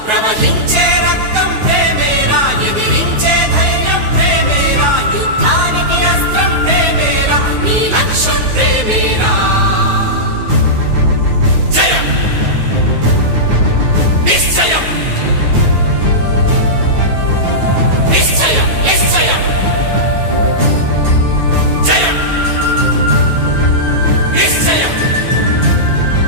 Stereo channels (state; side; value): late; left; 9.4 ms